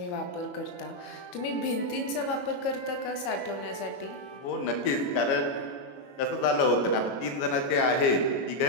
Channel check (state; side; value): late; right; 22 ms